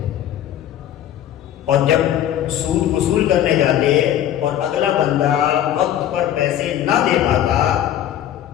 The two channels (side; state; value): right; quieter; 11.2 dB